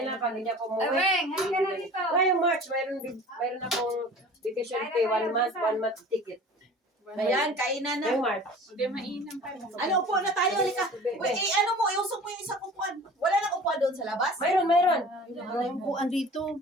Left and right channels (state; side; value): normal; both; correlation 0.42